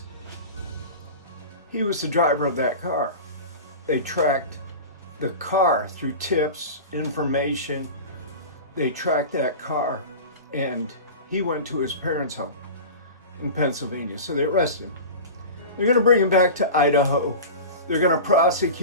he was the driver of that car. They tracked the car through tips, information. They tracked that car, and he went to his parents' home in Pennsylvania. So they arrested him. They're going to bring him back to Idaho. They're going to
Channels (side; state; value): both; inverted; correlation -0.31